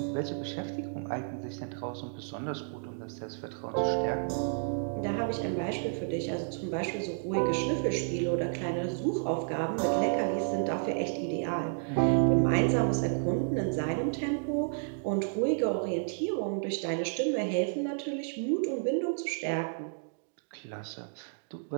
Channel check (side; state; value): left; silent; digital silence